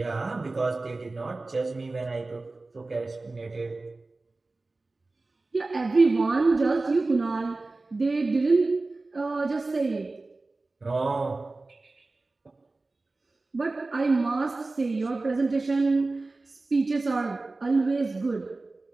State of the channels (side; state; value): left; quieter; 3.3 dB